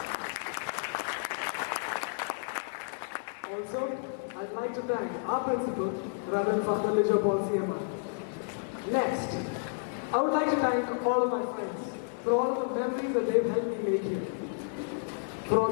Also, I'd like to thank our principal, Reverend Father Lijo Paul CMI. Next, I would like to thank all of my friends for all of the memories that they've helped me make here. For all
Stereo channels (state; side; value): silent; right; digital silence